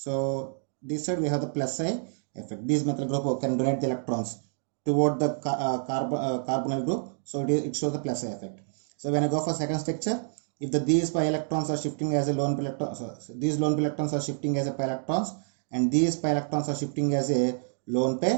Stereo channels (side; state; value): left; silent; digital silence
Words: this side we have the plus psi effect. These methyl group can donate the electrons toward the carbonyl group, so it shows the plus psi effect. So when I go for second structure, if these pi electrons are shifting as a lone pi electrons, these lone pi electrons are shifting as a pi electrons, and these pi electrons are shifting as a lone